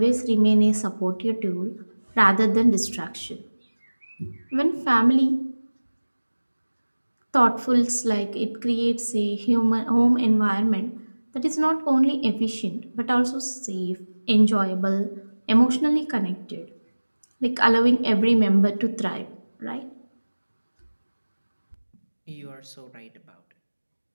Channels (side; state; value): both; inverted; correlation -1.00